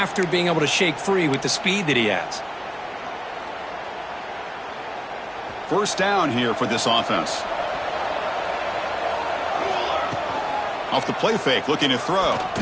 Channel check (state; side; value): identical; both; correlation 1.00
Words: being able to shake free with the speed that he has. First down here for this offense. Off the play fake, looking to throw.